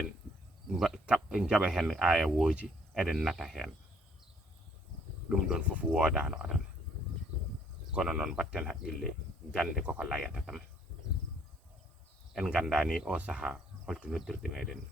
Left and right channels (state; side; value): normal; both; correlation 0.63